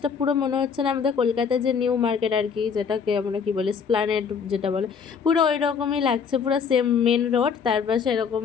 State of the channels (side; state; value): right; quieter; 6.3 dB